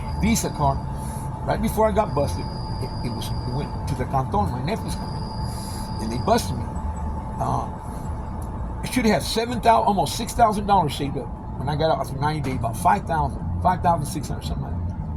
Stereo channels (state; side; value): identical; both; correlation 1.00